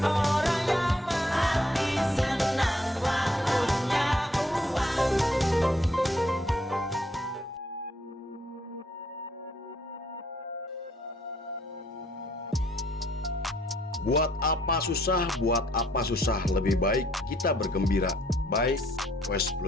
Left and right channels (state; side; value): normal; both; correlation 0.67